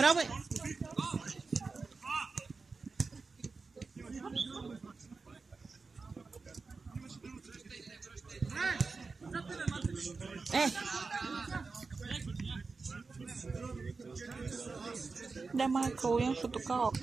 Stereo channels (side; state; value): left; quieter; 4.3 dB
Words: Да, Майкъл, защото